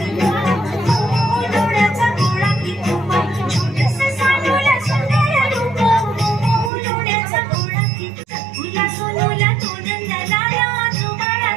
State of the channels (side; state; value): left; drops out; at 6.7 s